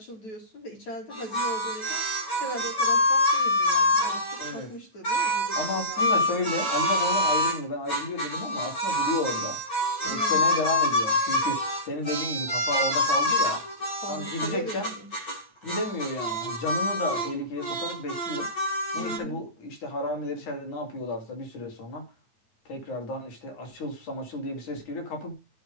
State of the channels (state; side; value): late; right; 9.0 ms